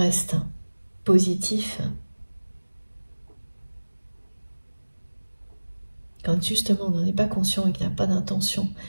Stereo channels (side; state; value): both; inverted; correlation -1.00